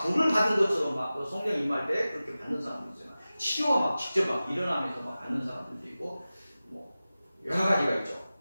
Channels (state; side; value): inverted; both; correlation -0.96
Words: 받은 것처럼 성령 임할 때 그렇게 받는 사람도 있어요. 치료가 직접 일어나면서 받는 사람들도 있고 여러 가지가 있죠.